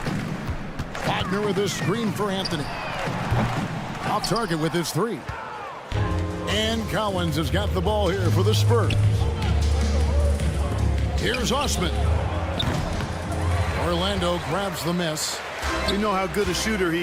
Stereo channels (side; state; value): both; identical; correlation 1.00